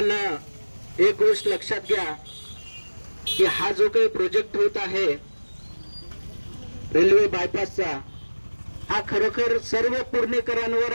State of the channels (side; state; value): both; inverted; correlation -1.00